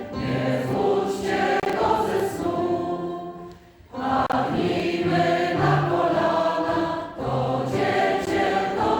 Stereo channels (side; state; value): both; identical; correlation 1.00